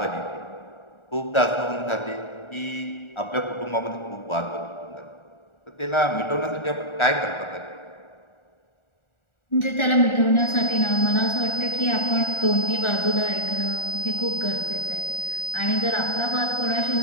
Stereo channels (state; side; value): late; right; 1.4 ms